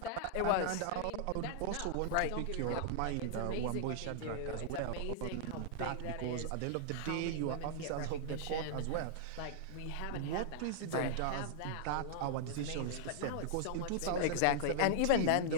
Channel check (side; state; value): both; different; correlation -0.01